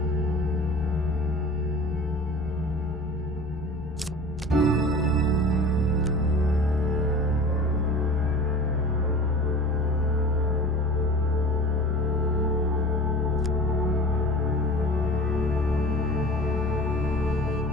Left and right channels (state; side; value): normal; both; correlation 0.39